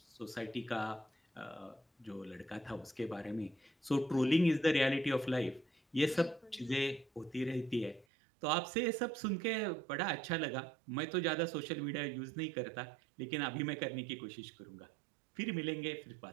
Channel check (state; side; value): drops out; left; at 8.1 s